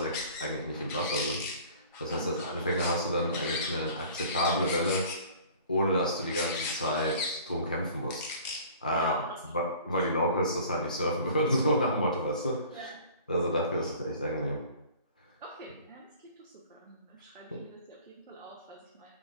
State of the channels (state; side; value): inverted; both; correlation -0.47